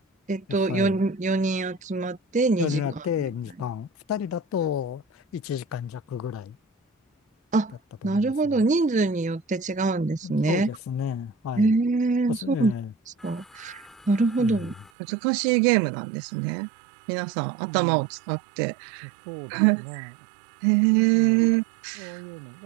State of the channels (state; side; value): drops out; left; at 14.9 s